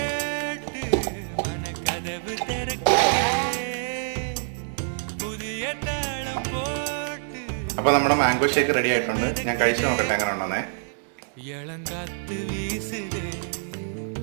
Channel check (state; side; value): silent; left; digital silence